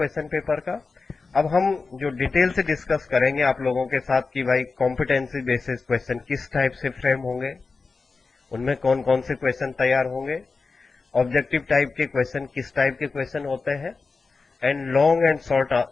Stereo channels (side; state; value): right; quieter; 4.3 dB